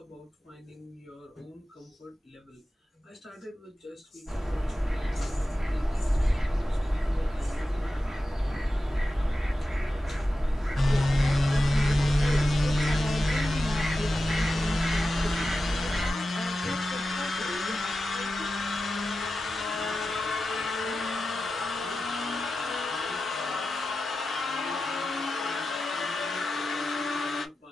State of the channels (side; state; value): both; normal; correlation 0.92